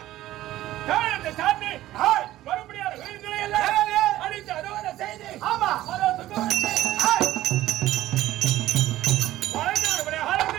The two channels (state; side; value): quieter; left; 14.9 dB